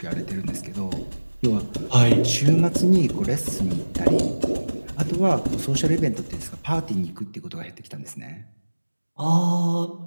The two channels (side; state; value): both; inverted; correlation -1.00